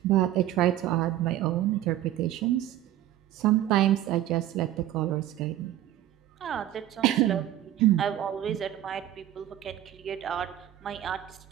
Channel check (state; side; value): quieter; left; 12.9 dB